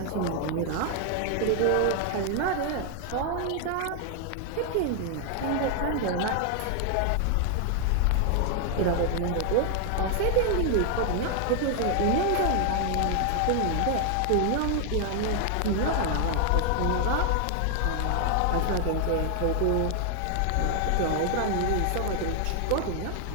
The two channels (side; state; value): both; different; correlation 0.00